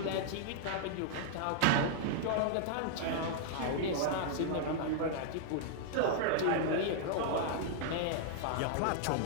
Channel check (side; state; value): both; different; correlation -0.01